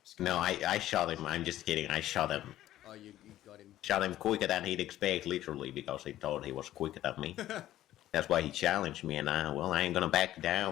No, I shot him. I'm just kidding. I shot him. Oh, you got him. Shot him quicker than he'd expect, literally, because he thought he was quicker than me. That's why he challenged me, and I ain't gonna back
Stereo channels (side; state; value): right; quieter; 13.6 dB